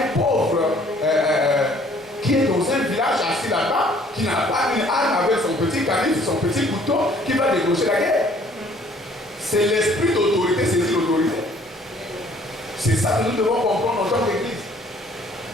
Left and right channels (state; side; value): normal; both; correlation 0.58